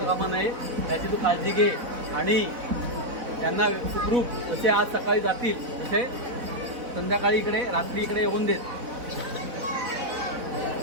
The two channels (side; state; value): left; late; 4.0 ms